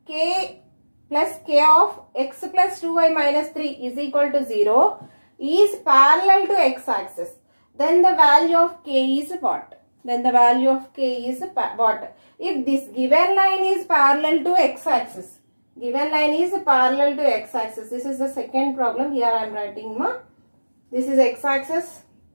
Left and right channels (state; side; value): inverted; both; correlation -1.00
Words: k plus k of x plus 2y minus 3 is equal to 0 is parallel to x-axis, then the value of k is what? Then the value of k is what? If this given line is parallel to x-axis, given line is parallel to x-axis. This is the second problem. Here I am writing this is x-axis.